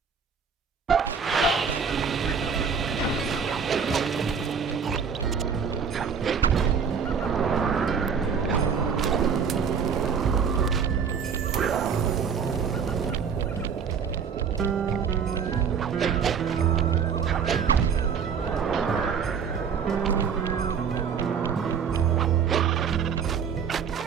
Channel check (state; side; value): quieter; left; 6.5 dB